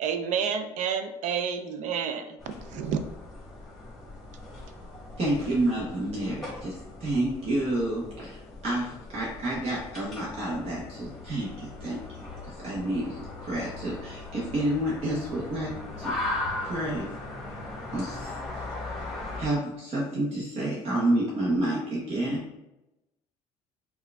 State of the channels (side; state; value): both; normal; correlation 0.60